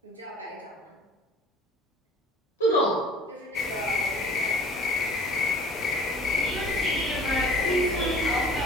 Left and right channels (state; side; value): normal; both; correlation 0.48